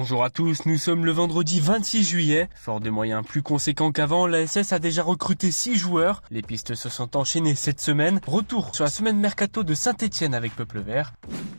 à tous, nous sommes le vendredi 26 juillet. Fort de moyens plus conséquents qu'avant, l'ASS a déjà recruté 6 joueurs. Les pistes se sont enchaînées cette semaine. Retour sur la semaine mercato de Saint-Etienne avec Peuple Vert.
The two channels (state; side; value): inverted; both; correlation -1.00